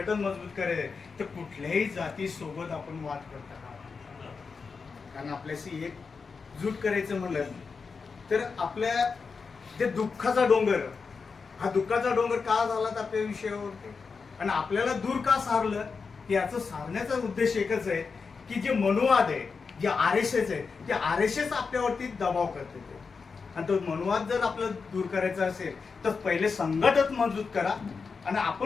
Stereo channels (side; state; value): right; quieter; 5.0 dB